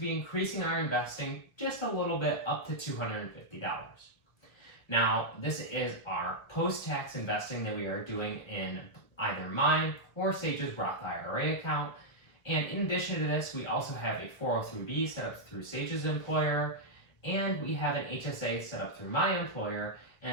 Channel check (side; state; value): right; late; 1.5 ms